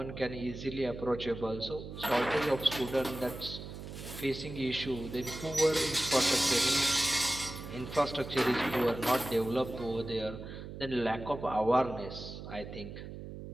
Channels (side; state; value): right; noise; hum, 10 dB below the sound